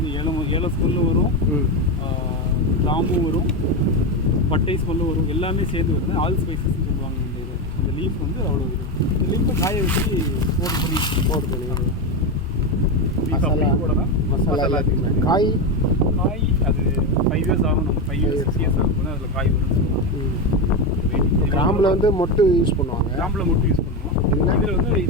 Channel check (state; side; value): normal; both; correlation 0.13